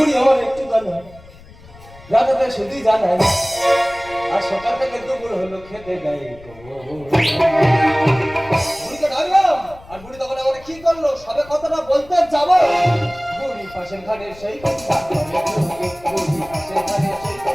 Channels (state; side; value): noise; left; rumble, 21 dB below the sound